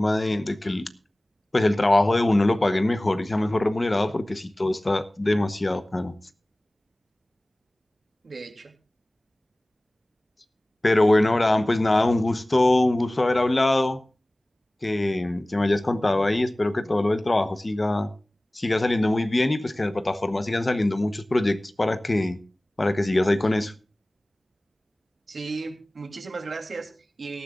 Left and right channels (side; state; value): both; normal; correlation 0.98